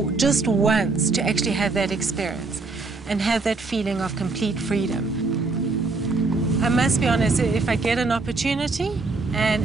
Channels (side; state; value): left; quieter; 3.8 dB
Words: just once to actually have that experience and have that feeling of complete freedom. I must be honest, if I get an opportunity